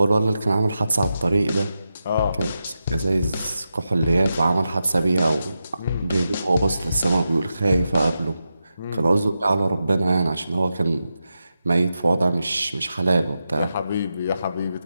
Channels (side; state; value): both; inverted; correlation -0.89